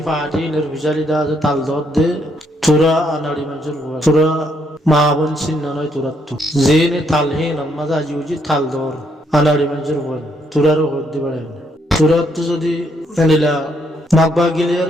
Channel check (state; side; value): normal; both; correlation 0.73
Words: ফাটি নির্বিচারি দা আছে তাল দর দে তোরা আনাড়ি মানুষের হয় তোরা মা বোন চিন্না নয় তোরা তো যে নে তালহীন মাঝে আজি উজি তাল দর আনাড়ি মানুষের হয় তোরারও হতে পারে তোরা তো যদি এনিলা মগবা